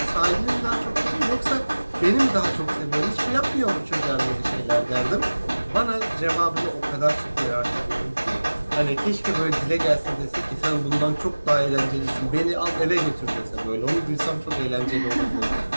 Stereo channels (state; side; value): inverted; both; correlation -1.00